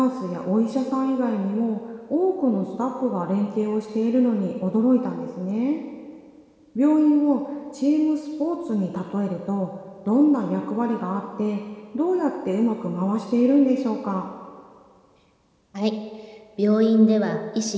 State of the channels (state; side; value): identical; both; correlation 1.00